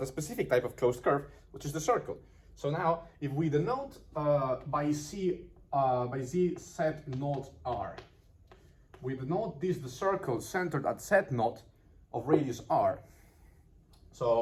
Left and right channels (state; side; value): identical; both; correlation 1.00